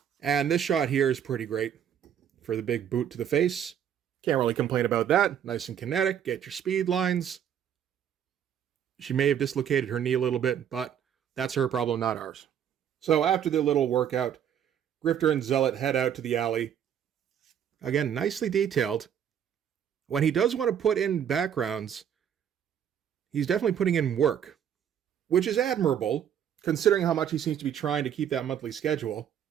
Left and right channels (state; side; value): quieter; left; 9.1 dB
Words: And this shot here is pretty great for the big boot to the face. Can't really complain about that. Nice and kinetic. Get your speed lines. She may have dislocated her knee a little bit, but that's her problem, not ours. So after the little workout, Grifter and Zealot head out to the alley. Again, nicely detailed. When he does want to put in backgrounds, he's definitely putting in work, which is admirable, considering how much he seems to be trying to keep that monthly schedule.